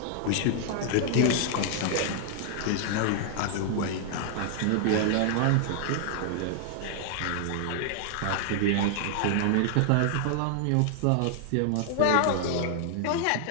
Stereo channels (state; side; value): different; both; correlation 0.00